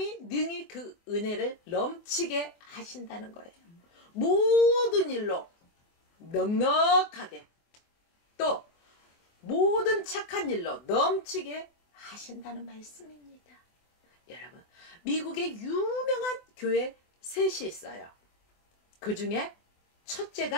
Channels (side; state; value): right; late; 24 ms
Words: 능히 그 은혜를 넘치게 하신다는 거예요. 모든 일로 넉넉하게 또 모든 착한 일로 넘치게 하신다는 말씀입니다. 여러분, 미국의 유명한 교회 셋이 있어요. 그 중에